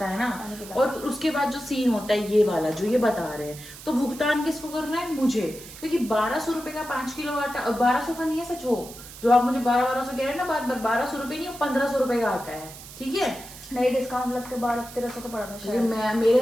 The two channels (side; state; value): right; noise; hiss, 15 dB below the sound